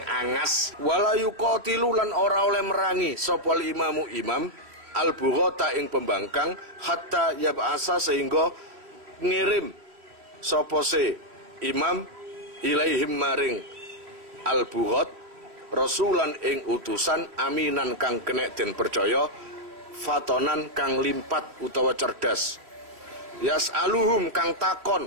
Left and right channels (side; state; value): left; late; 3.2 ms